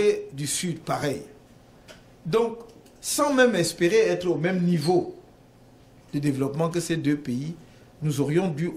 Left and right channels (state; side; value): identical; both; correlation 1.00